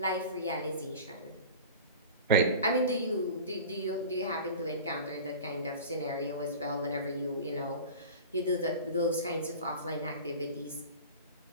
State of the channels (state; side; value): inverted; both; correlation -0.35